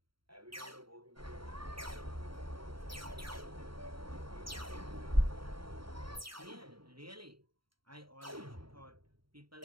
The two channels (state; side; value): late; left; 0.74 ms